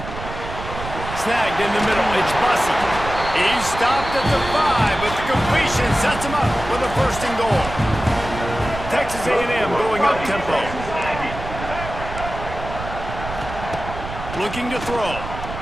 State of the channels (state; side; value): noise; right; rumble, 9 dB below the sound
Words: Snagged in the middle, it's Bussey. He's stopped at the 5, but the completion sets him up for the 1st and goal. Texas A&M going up tempo. Looking to throw.